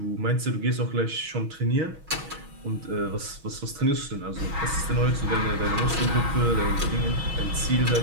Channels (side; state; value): left; late; 6.2 ms